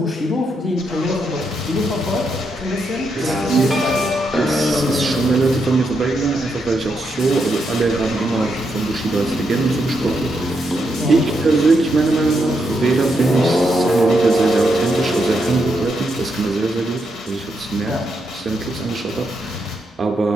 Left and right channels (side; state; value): both; normal; correlation 0.81